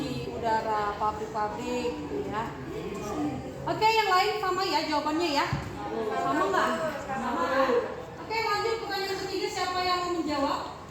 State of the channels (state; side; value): identical; both; correlation 1.00